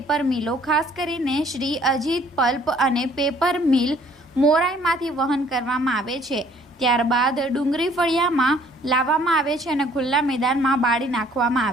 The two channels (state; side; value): normal; both; correlation 0.59